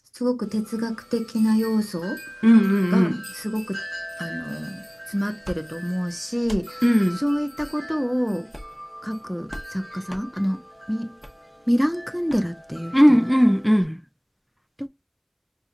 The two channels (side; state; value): both; identical; correlation 1.00